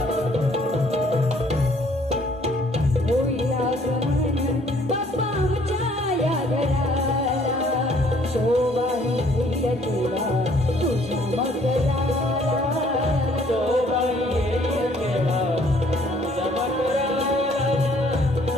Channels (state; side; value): normal; both; correlation 0.61